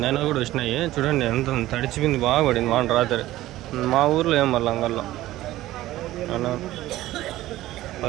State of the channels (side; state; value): left; quieter; 15.7 dB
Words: అయినా కూడా వచ్చినాయి చూడండి ఎంత తడిచిపోయింది బాగా పడింది వాన రాత్రి మా ఊర్లో ఏం మళ్ళీ అంగల్లో